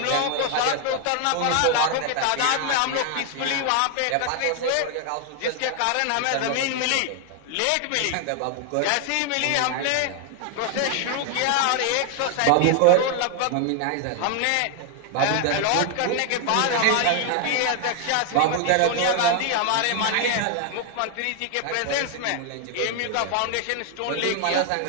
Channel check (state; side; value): different; both; correlation 0.00